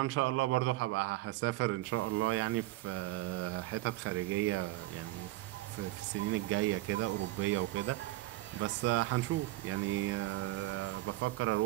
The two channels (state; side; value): quieter; left; 18.1 dB